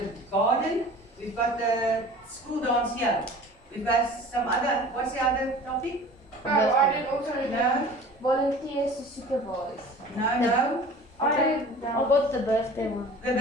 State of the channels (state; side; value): normal; both; correlation 0.43